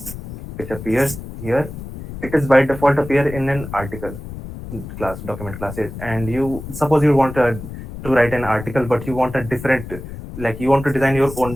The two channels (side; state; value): left; noise; rumble, 11 dB below the sound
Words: which appears here. It is by default appear in an article class, document classes. And you suppose you want to write an article, but you want a different, like you want to design your